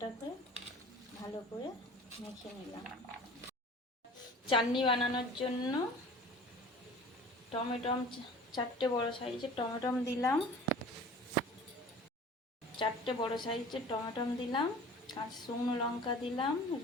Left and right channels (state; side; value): normal; both; correlation 0.43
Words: ভালো করে মেখে নিলাম। চাটনি বানানোর জন্য টমেটম 4টে বড় সাইজের টমেটম দিলাম। 4টে বড় সাইজের টমেটম দিলাম, কাঁচা শুকনো লঙ্কা দিলাম,